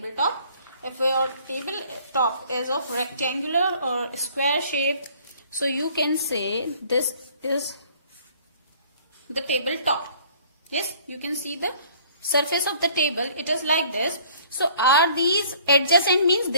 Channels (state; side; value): inverted; both; correlation -0.56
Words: If your tabletop is of rectangular or square shape, so you can say this is the tabletop. Yes, you can see the surface of the table, it is like this. So are these adjacent, means